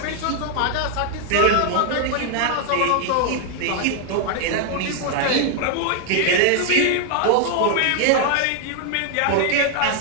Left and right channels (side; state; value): both; different; correlation 0.00